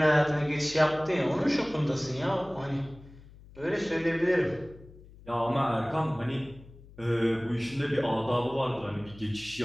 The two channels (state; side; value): noise; left; hum, 21 dB below the sound